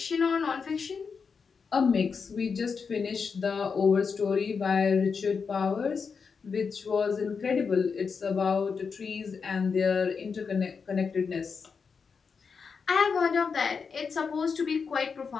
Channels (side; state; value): right; quieter; 5.6 dB